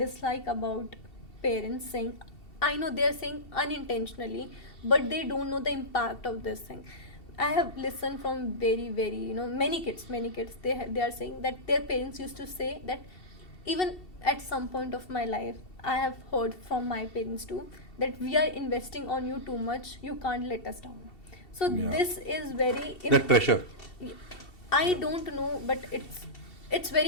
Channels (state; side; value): late; right; 2.7 ms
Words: about parents saying, I know they're saying unintentionally, but they don't know the impact of this thing. I have listened from very many kids, they are saying that their parents used to say that, even at some point of my life I have heard from my parents too, that we are investing on you too much, you can't let us down. So this is very that pressure. I don't know, but it's